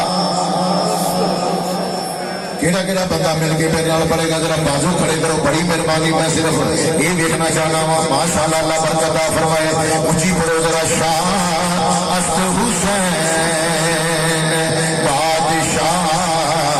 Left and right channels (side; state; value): both; identical; correlation 1.00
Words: بندہ مل کے میرے نال پڑے گا ذرا بازو کھڑے کرو بڑی مہربانی میں صرف یہ دیکھنا چاہنا ہوں ماشاءاللہ اللہ برکت عطا فرمائے اونچی پڑھو ذرا شاہ است حسین بادشاہ